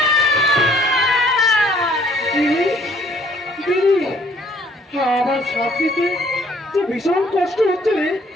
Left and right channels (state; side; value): normal; both; correlation 0.61